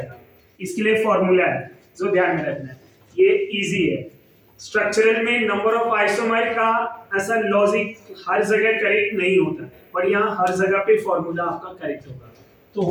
इसके लिए फॉर्मूला है जो ध्यान में रखना है, ये इजी है। स्ट्रक्चरल में नंबर ऑफ आइसोमर का ऐसा लॉजिक हर जगह करेक्ट नहीं होता, पर यहाँ हर जगह पे फॉर्मूला आपका करेक्ट होगा। तो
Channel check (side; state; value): both; identical; correlation 1.00